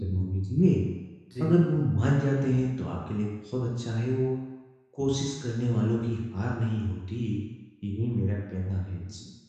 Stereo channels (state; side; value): identical; both; correlation 1.00